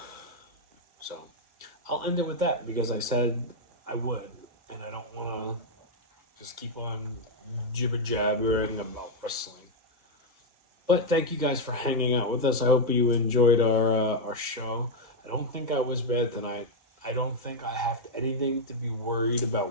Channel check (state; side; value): late; left; 2.2 ms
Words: So, I'll end it with that because I said I would, and I don't want to just keep on jibber-jabbering about wrestling. But thank you guys for hanging out with us. I hope you enjoyed our show. I don't think I was bad tonight. I don't think I have anything to be worried about